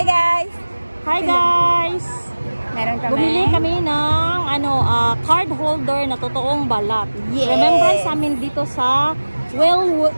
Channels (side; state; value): both; inverted; correlation -1.00